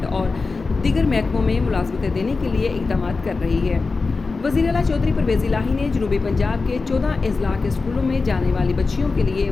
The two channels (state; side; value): quieter; right; 4.1 dB